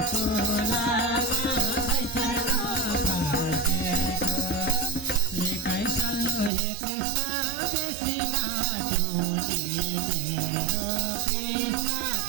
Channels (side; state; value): left; drops out; at 6.5 s